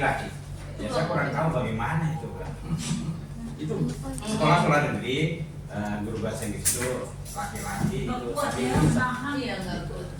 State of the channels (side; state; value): both; identical; correlation 1.00